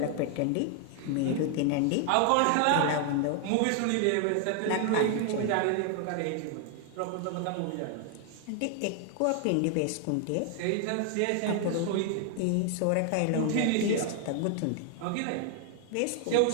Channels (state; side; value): different; both; correlation 0.00